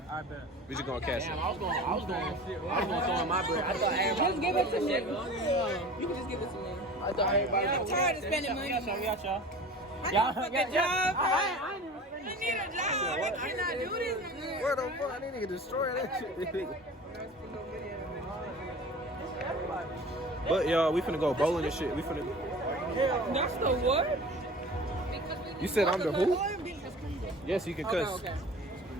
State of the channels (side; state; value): both; normal; correlation 0.39